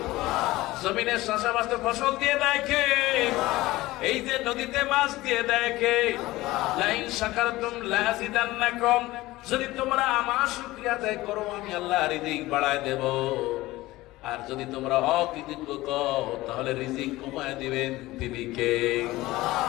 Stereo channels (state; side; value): quieter; right; 18.3 dB